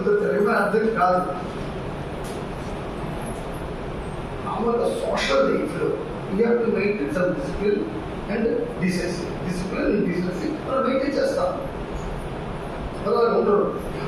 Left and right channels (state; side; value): identical; both; correlation 1.00